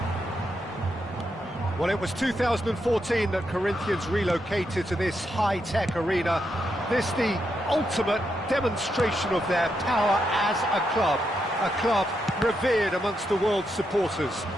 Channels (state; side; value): normal; both; correlation 0.82